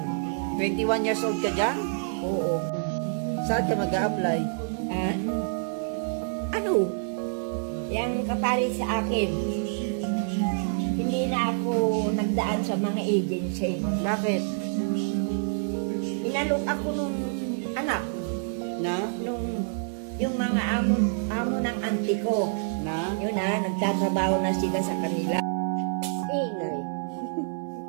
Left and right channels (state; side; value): silent; left; digital silence